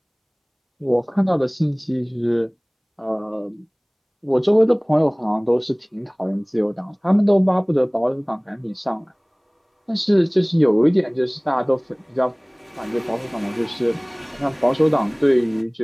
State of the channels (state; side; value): identical; both; correlation 1.00